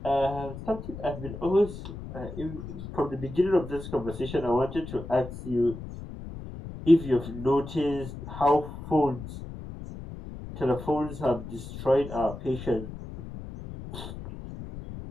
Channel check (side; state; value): left; noise; rumble, 11 dB below the sound